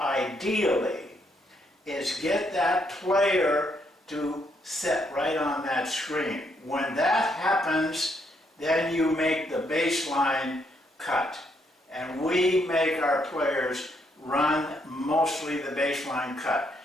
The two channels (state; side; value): normal; both; correlation 0.74